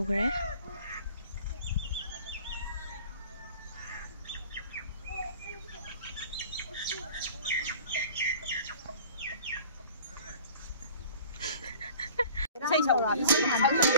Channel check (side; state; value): both; inverted; correlation -0.46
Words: cái xây sầu rồi